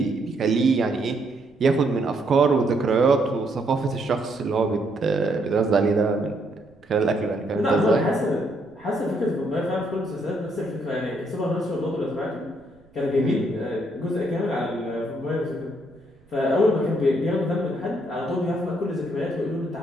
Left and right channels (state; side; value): noise; right; rumble, 30 dB below the sound